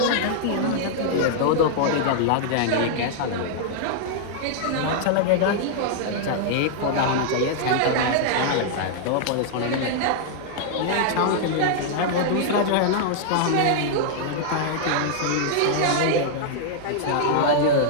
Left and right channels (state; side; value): different; both; correlation -0.01